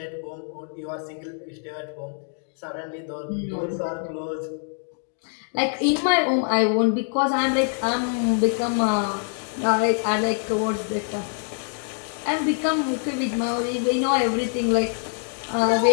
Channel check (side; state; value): right; silent; 58 dB below the other